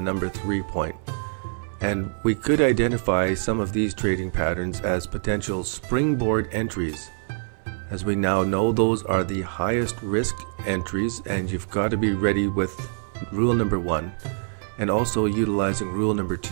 number 3 point. And we could identify some of these trading patterns as potential springboard entries. As we now know, those are the highest risk entries, and you've got to be ready with rule number 1. And also utilizing rule number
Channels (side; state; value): left; silent; 62 dB below the other